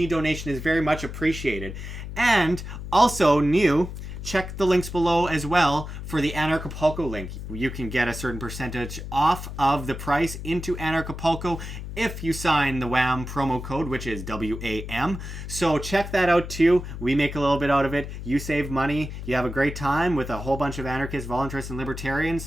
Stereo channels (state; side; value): noise; left; hum, 8 dB below the sound